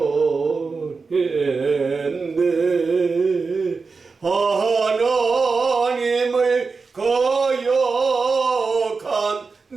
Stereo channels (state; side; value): quieter; left; 4.5 dB